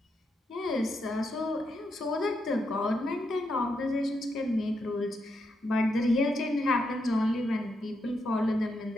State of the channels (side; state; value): both; normal; correlation 0.82